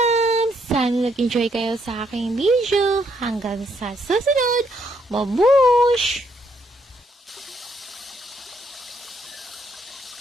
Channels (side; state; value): both; normal; correlation 0.73